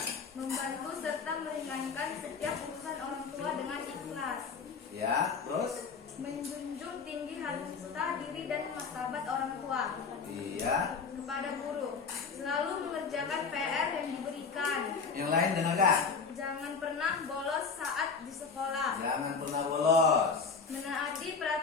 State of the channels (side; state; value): right; quieter; 5.3 dB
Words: Membantu serta meringankan setiap urusan orang tua dengan ikhlas. Ya, terus? Menjunjung tinggi harta diri dan martabat orang tua. Iya. Kepada guru, selalu mengerjakan PR yang diberikan. Yang lain dengarkan. Jangan pernah bolos saat di sekolah. Jangan pernah bolos. Menaati